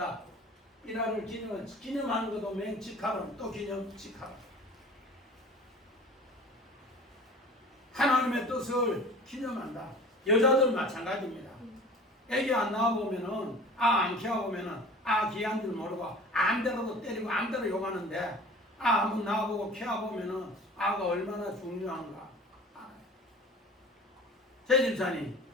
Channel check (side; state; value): both; normal; correlation 0.42